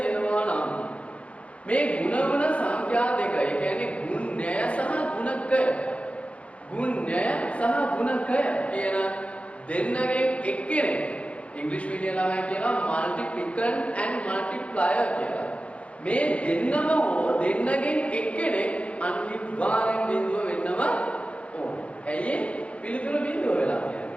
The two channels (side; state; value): right; late; 0.063 ms